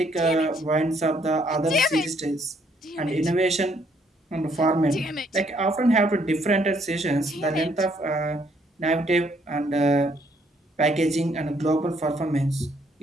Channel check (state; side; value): normal; both; correlation 0.68